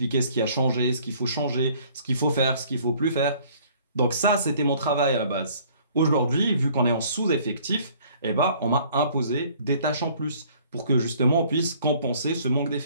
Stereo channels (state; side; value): inverted; both; correlation -0.57